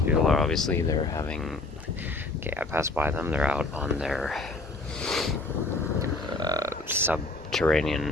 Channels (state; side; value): quieter; right; 3.2 dB